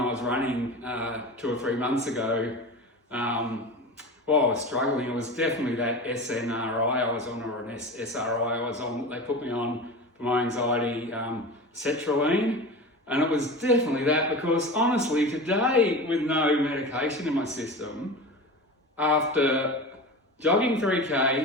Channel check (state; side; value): normal; both; correlation 0.29